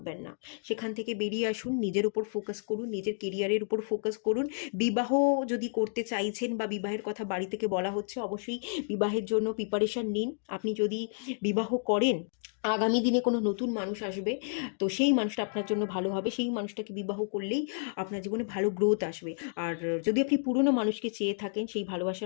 না, সেখান থেকে বেরিয়ে আসুন, নিজের উপর ফোকাস করুন, নিজের কেরিয়ারের উপর ফোকাস করুন। বিবাহ যদি করতে চাইছেন বা বিবাহের কথা বাড়ি থেকে বলা হচ্ছে, অবশ্যই বিবাহের জন্য প্রিপারেশন নিন। আপনি যদি বিবাহ করেন, আগামী দিনে কোনো নতুন মানুষ আসবে, তো সেই মানুষটা আপনার জন্য ভালো হবে, সেই মানুষটাকে বিবাহ করলেই আপনার জীবনে ভালো গ্রোথ আসবে। আর যদি আপনি পুরনো মানুষকে চেয়ে থাকেন, সেই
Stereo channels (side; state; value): right; silent; digital silence